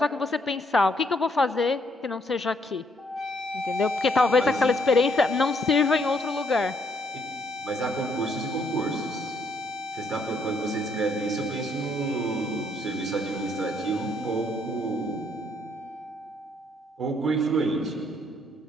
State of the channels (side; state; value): both; normal; correlation 0.70